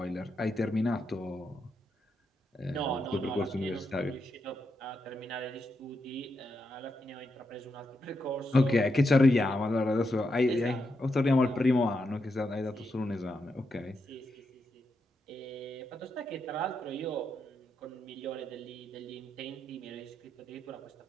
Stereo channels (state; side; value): normal; both; correlation 0.83